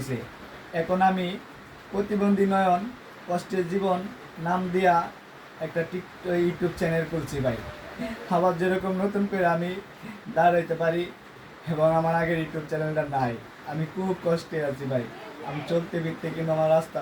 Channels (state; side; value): identical; both; correlation 1.00